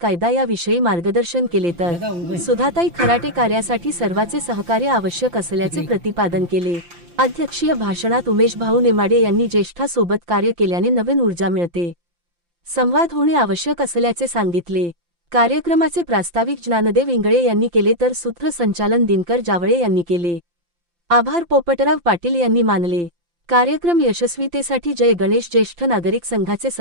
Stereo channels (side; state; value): left; late; 5.8 ms